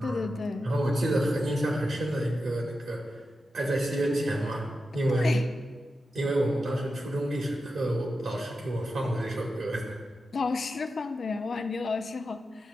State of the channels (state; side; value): normal; both; correlation 0.90